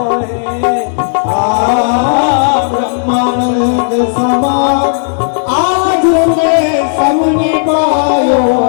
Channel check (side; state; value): right; silent; digital silence